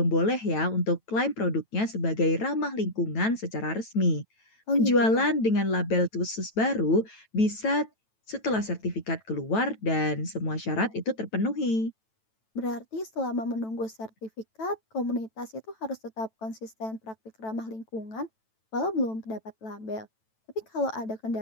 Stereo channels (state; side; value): late; right; 9.1 ms